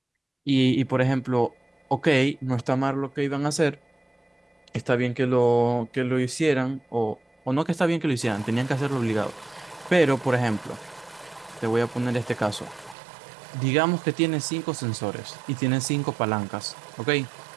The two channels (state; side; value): drops out; left; at 13.0 s